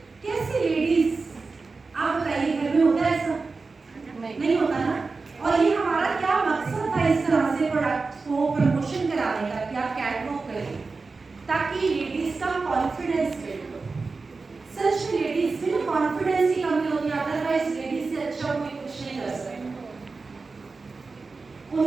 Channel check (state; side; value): quieter; left; 4.1 dB